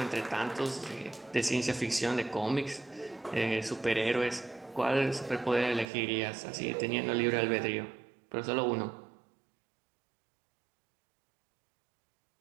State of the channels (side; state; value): left; drops out; at 5.9 s